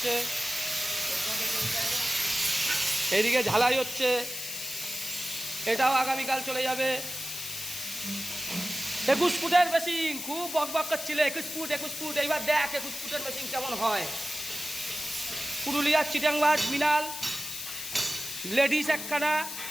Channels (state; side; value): noise; left; hiss, 7 dB below the sound